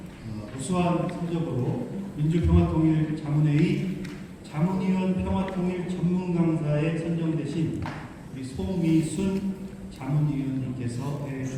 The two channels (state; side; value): identical; both; correlation 1.00